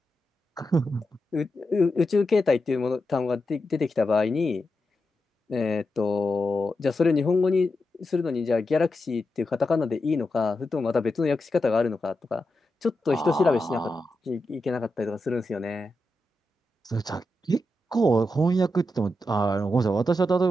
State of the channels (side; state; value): both; normal; correlation 0.88